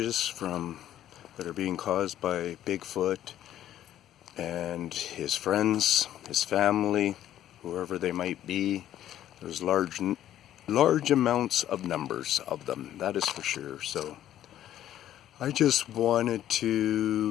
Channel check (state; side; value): quieter; right; 11.9 dB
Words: that are being caused by Bigfoot and his friends, his family, whoever they might be. There's large amounts of numbers of them, that is for sure. So I just wanted